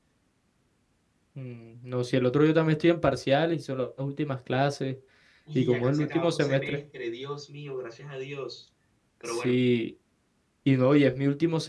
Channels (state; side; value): identical; both; correlation 1.00